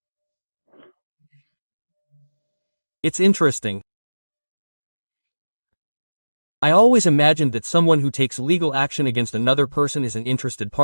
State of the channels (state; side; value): inverted; both; correlation -1.00